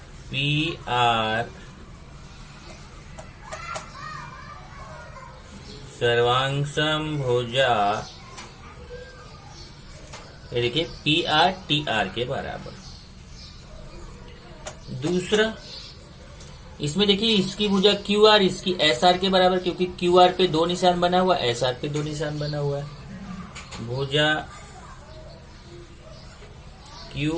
पी आर सर्वांशम भुजा, ये देखिए PRTR के बराबर। दूसरा, इसमें देखिए इसकी भुजा QR इसकी SR के बराबर, क्योंकि QR पे 2 निशान बना हुआ, SR पे 2 निशान बना हुआ है। भुजा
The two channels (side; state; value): both; identical; correlation 1.00